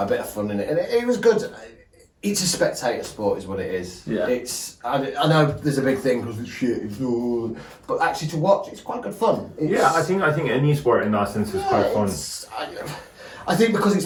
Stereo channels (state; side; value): identical; both; correlation 1.00